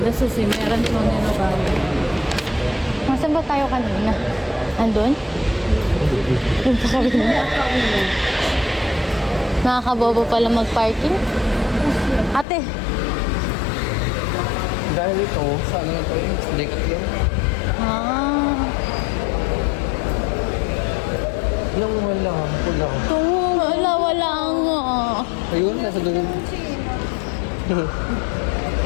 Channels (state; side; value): drops out; right; at 12.5 s